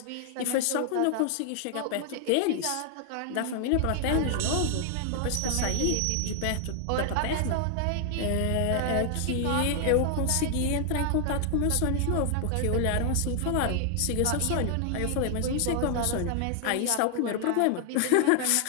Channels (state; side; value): different; both; correlation 0.00